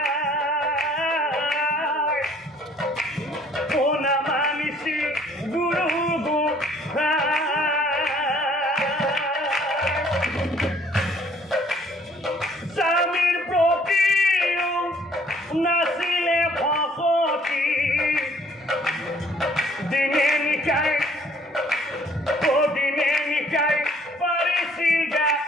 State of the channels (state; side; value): normal; both; correlation 0.59